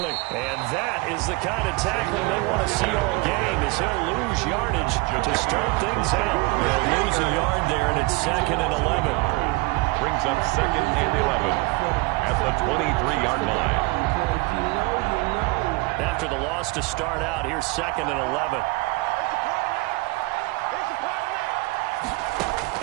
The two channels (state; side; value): quieter; left; 24.7 dB